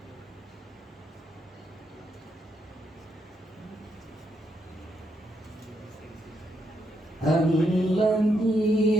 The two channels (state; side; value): normal; both; correlation 0.79